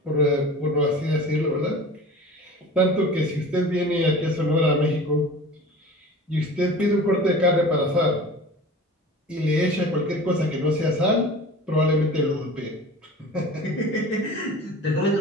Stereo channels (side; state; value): both; normal; correlation 0.39